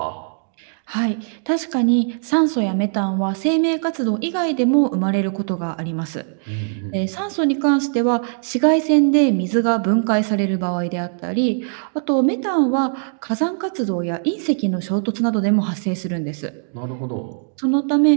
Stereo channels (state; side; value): silent; left; digital silence